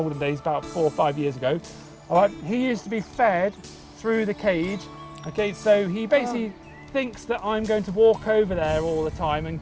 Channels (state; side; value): identical; both; correlation 1.00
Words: about 4 or 5 years ago, alright, he used to be fed through the cage. Okay, so he basically thinks that I'm going to walk over there all the time and